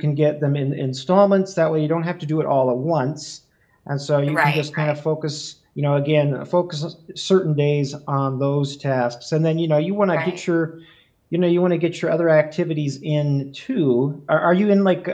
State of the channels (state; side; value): identical; both; correlation 1.00